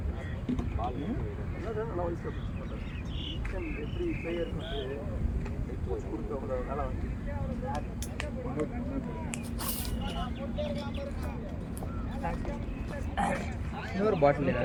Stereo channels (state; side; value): identical; both; correlation 1.00